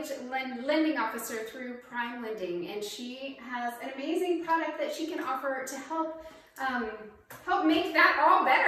lending officer through Prime Lending, and she has an amazing product that she can offer to help make that all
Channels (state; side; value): identical; both; correlation 1.00